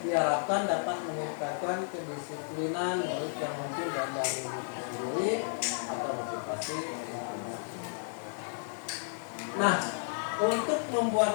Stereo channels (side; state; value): right; silent; digital silence